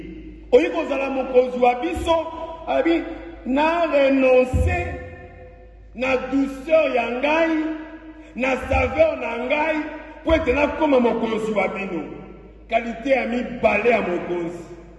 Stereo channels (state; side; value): identical; both; correlation 1.00